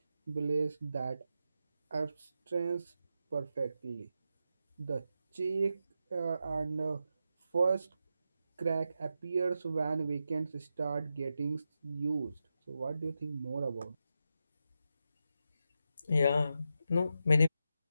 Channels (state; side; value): inverted; both; correlation -0.88